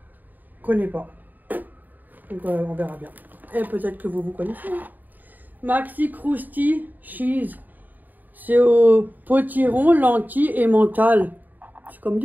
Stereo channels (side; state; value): left; late; 0.086 ms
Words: qu'on connaît pas. Donc on verra bien. Et peut-être que vous connaissez. Hein. Maxi Krusty Cheese. C'est au potiron, lentilles et mental. C'est comme